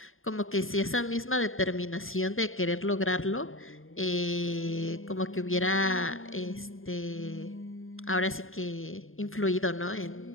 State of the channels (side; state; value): right; late; 0.60 ms